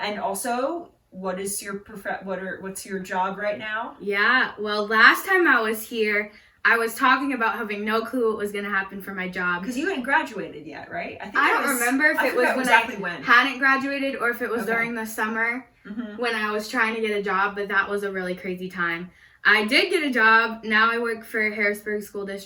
also, what's your job right now? Yeah, well, last time I was here, I was talking about having no clue what was going to happen for my job. Because you hadn't graduated yet, right? I don't remember if it was when I hadn't graduated or if it was during the summer when I was trying to get a job, but that was a really crazy time. I did get a job. Now I work for Harrisburg School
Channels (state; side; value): identical; both; correlation 1.00